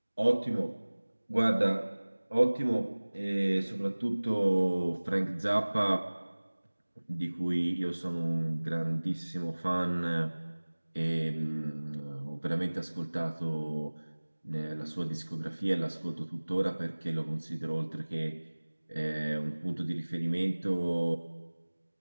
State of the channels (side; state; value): both; inverted; correlation -1.00